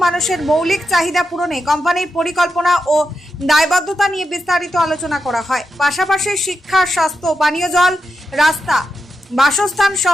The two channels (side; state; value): both; normal; correlation 0.87